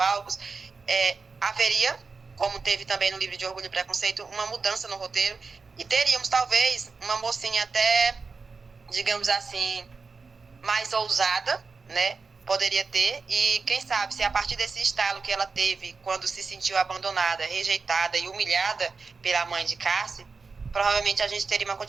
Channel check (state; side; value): quieter; left; 4.6 dB